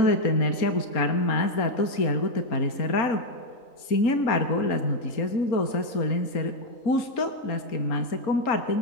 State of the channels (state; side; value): late; right; 4.2 ms